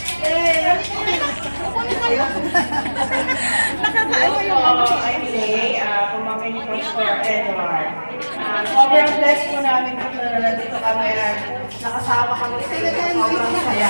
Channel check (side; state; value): both; inverted; correlation -1.00